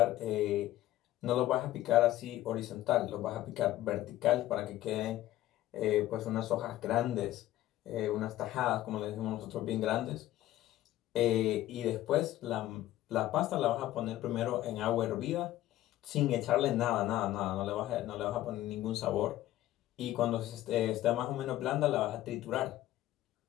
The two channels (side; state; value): right; quieter; 14.6 dB